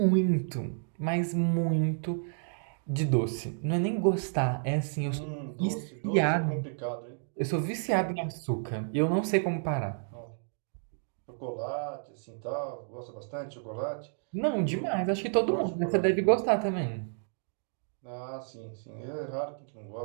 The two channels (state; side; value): silent; left; digital silence